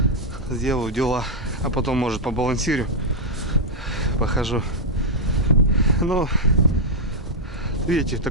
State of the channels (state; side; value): normal; both; correlation -0.05